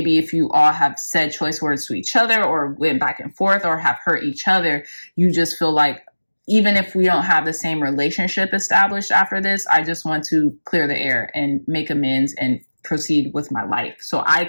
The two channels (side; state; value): both; inverted; correlation -1.00